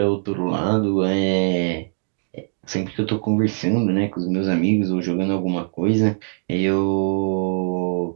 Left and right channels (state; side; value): silent; left; digital silence